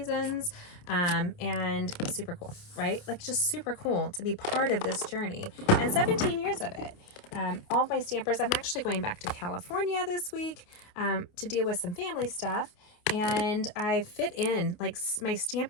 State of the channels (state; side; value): late; right; 28 ms